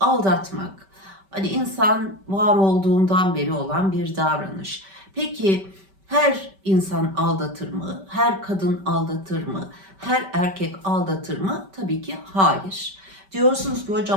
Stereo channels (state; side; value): late; left; 5.2 ms